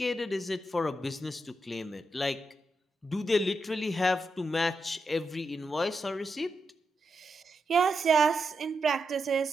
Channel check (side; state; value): both; normal; correlation 0.86